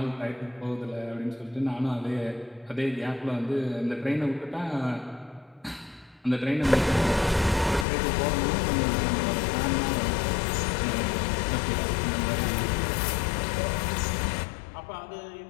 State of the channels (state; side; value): drops out; right; at 7.9 s